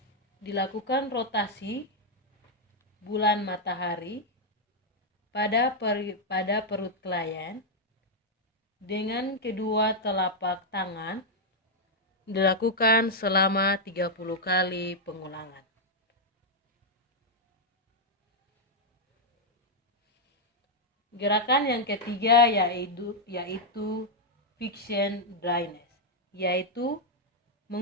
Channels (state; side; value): normal; both; correlation -0.02